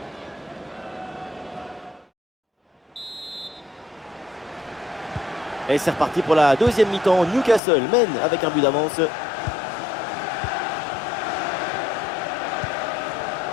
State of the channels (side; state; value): right; drops out; at 7.6 s